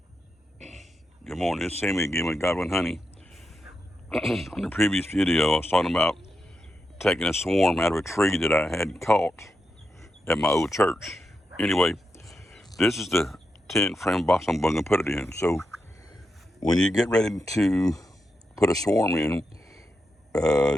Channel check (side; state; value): both; normal; correlation 0.86